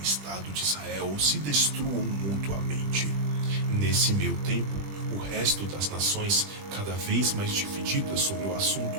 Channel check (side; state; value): left; late; 20 ms